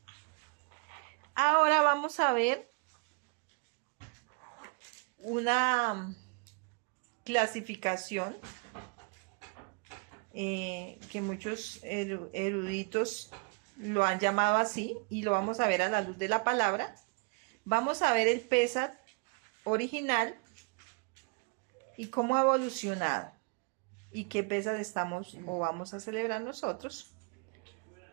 Ahora vamos a ver una clasificación que muchos eruditos lo han llamado así, y lo vamos a ver a la luz de la palabra. Vamos a ver el Pesach original y cómo ha evolucionado y qué Pesach estamos o vamos a celebrar nosotros.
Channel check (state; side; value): quieter; left; 34.5 dB